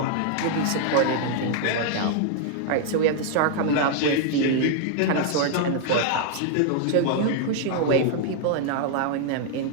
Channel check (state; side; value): different; both; correlation 0.00